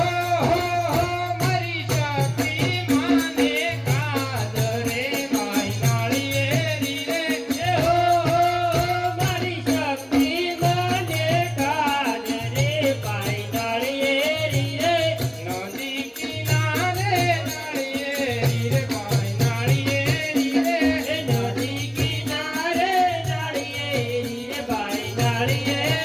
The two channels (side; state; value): both; identical; correlation 1.00